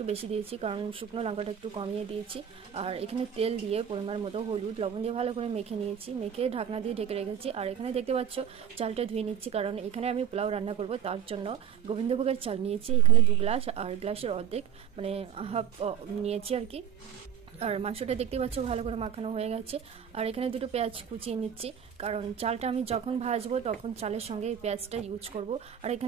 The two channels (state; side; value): quieter; left; 9.2 dB